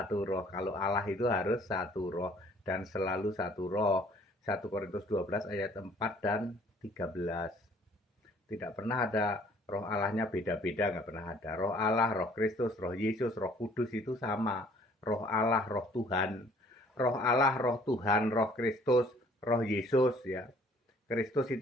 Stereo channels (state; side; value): normal; both; correlation 0.57